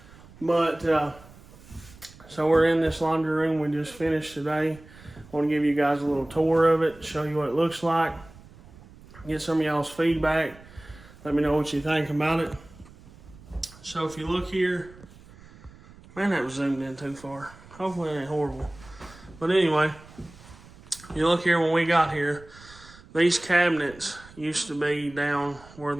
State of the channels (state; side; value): noise; right; rumble, 22 dB below the sound